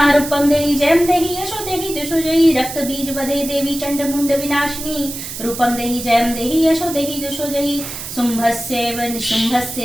रूपम देहि जयम देहि यशो देहि दुषो जहि। रक्त बीज वदे देवी चंड मुंड विनाशिनी रूपम देहि जयम देहि यशो देहि दुषो जहि। शुंभस्यैव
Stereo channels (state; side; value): noise; right; hiss, 8 dB below the sound